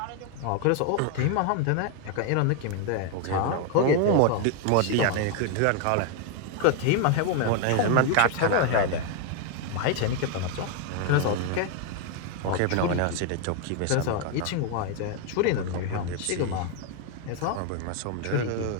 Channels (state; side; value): different; both; correlation 0.00